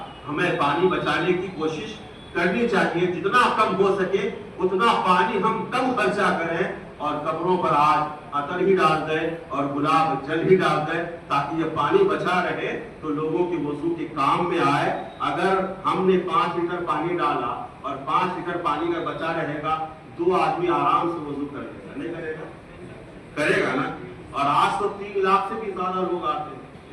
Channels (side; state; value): both; identical; correlation 1.00